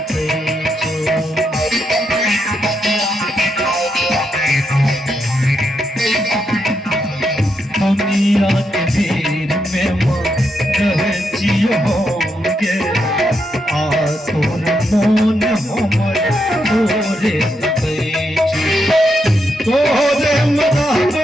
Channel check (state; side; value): normal; both; correlation 0.81